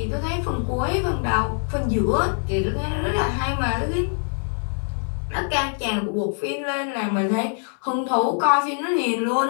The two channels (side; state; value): right; silent; 59 dB below the other